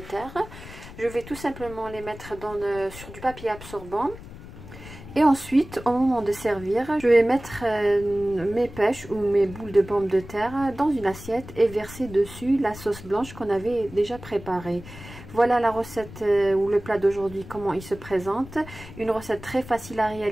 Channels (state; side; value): noise; left; rumble, 15 dB below the sound